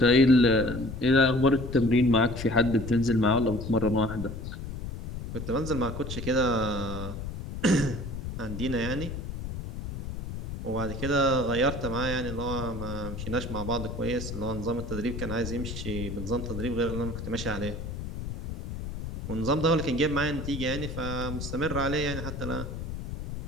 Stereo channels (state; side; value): noise; left; rumble, 7 dB below the sound